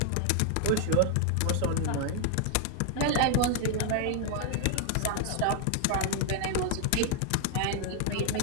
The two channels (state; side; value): different; both; correlation 0.00